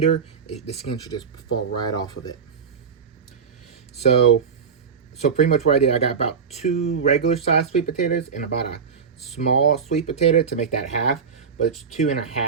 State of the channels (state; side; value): quieter; left; 6.2 dB